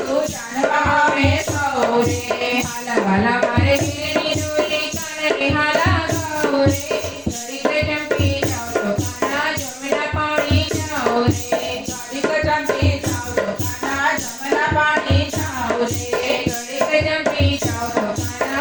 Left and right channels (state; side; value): identical; both; correlation 1.00